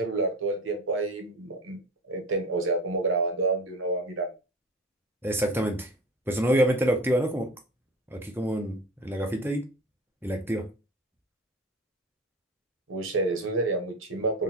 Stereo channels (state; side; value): normal; both; correlation 0.34